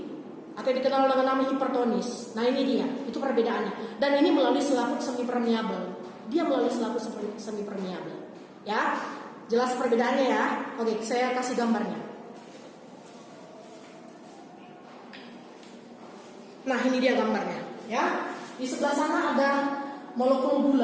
atau dikenal dengan nama hipertonis. Nah, ini dia, itu perbedaannya. Dan ini melalui selaput semi permeabel. Dia melalui selaput semi permeabel. Ya, jelas perbedaannya ya. Oke, saya kasih gambarnya. Nah, ini dia gambarnya, ya. Di sebelah sana ada molekul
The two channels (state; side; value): identical; both; correlation 1.00